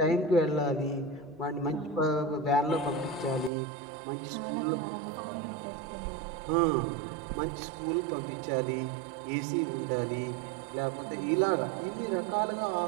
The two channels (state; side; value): drops out; left; at 3.5 s